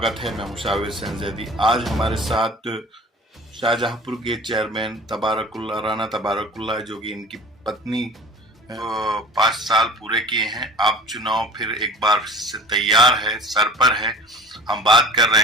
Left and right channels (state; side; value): normal; both; correlation 0.41